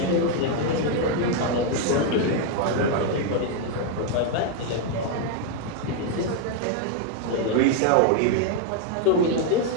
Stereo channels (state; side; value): different; both; correlation 0.01